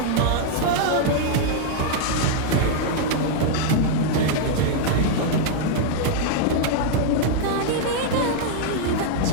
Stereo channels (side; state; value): both; different; correlation -0.01